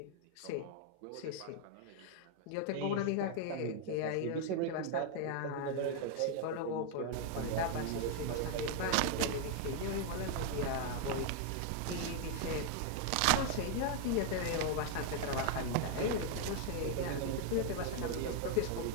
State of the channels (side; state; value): both; different; correlation 0.00